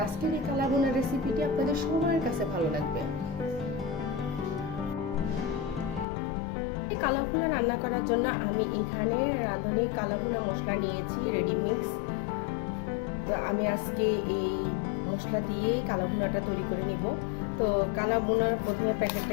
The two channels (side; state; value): right; drops out; at 6.1 s